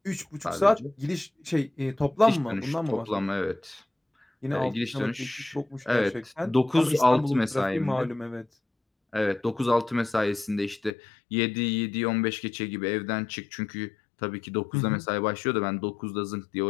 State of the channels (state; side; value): drops out; right; at 10.9 s